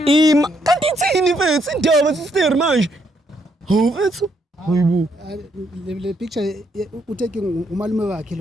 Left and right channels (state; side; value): normal; both; correlation 0.74